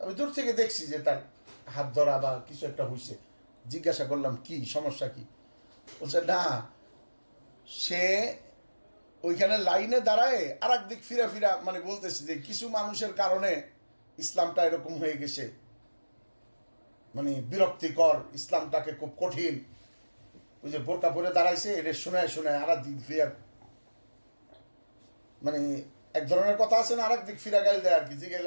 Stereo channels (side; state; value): both; inverted; correlation -1.00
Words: দূর থেকে দেখছি যে তার হাত ধরা বা কিছু একটা হয়েছে। জিজ্ঞাসা করলাম কি সমস্যা কি? বলছে না, সে ওইখানে লাইনে দাঁড়ায় আর একদিক ফিরা ফিরা মানে বলতেছে যে কিছু মানুষের কারণে ইসলামটা এরকম হয়ে গেছে, মানে বিরক্তিকর, ইসলামটাকে খুব কঠিন। ওই যে বোরকা পরে দাঁড়াইছে, এটা শোনায় শোনায় আর দিক ফিরা, মানে এক ধরনের কথা আছে না, আর এক দিক ফিরা গাইল দেয় আর কি, যে